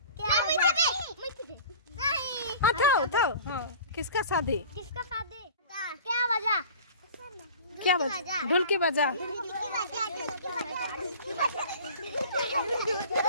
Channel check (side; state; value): both; inverted; correlation -0.42